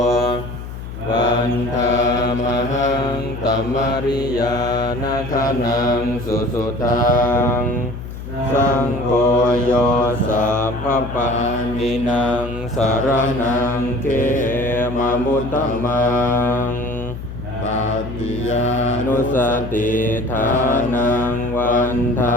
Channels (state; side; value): noise; left; hum, 10 dB below the sound